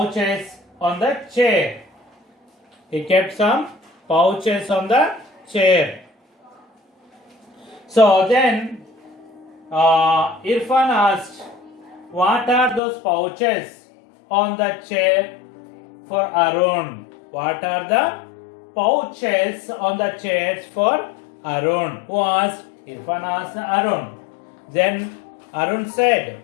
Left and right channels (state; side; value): drops out; right; at 12.8 s